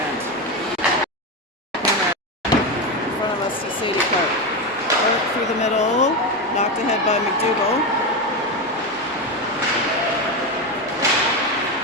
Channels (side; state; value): both; normal; correlation 0.14